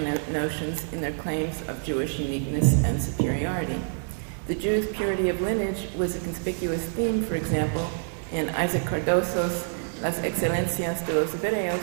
notions in their claims of Jewish uniqueness and superiority. The Jews' purity of lineage was a conspicuous theme, for example, in Isaac Cardoso's Las Excelencias de los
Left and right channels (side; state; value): left; silent; digital silence